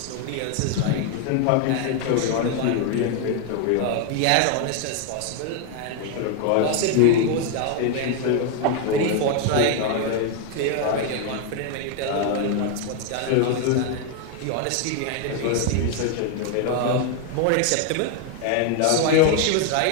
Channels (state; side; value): different; both; correlation 0.01